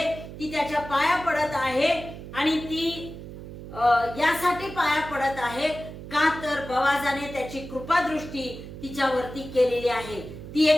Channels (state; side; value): noise; right; hum, 12 dB below the sound